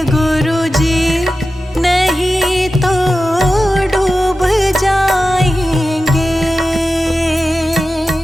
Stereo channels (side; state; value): both; normal; correlation 0.93